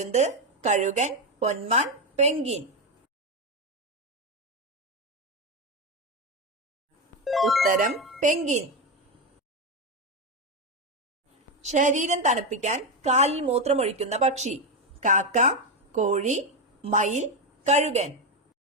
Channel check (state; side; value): normal; both; correlation 0.10